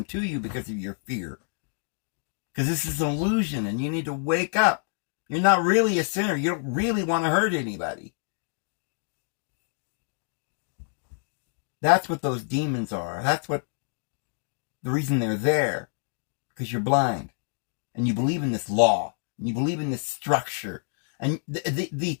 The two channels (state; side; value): silent; right; 60 dB below the other